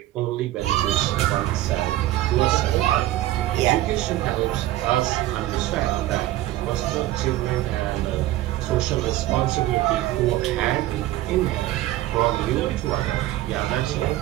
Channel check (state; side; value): quieter; left; 15.3 dB